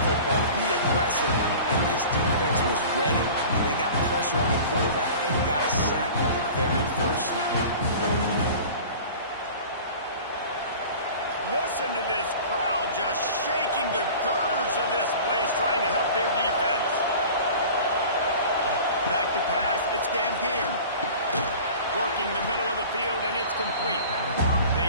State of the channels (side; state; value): both; inverted; correlation -0.40